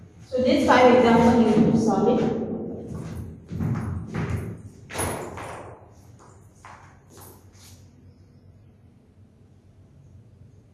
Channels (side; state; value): both; identical; correlation 1.00